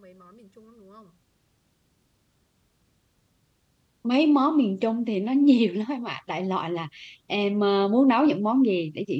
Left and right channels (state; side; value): identical; both; correlation 1.00